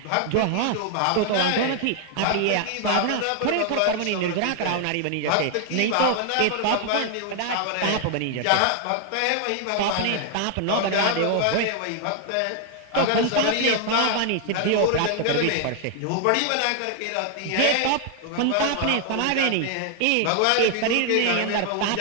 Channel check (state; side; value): different; both; correlation 0.00